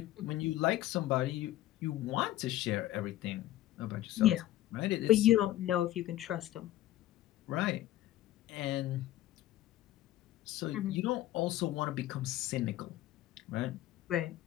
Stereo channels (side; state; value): right; quieter; 14.6 dB